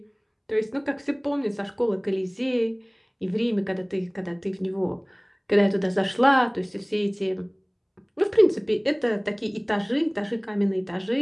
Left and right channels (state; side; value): identical; both; correlation 1.00